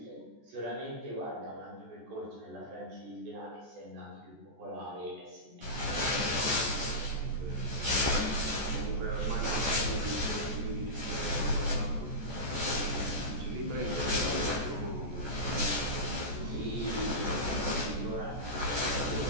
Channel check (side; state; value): left; late; 14 ms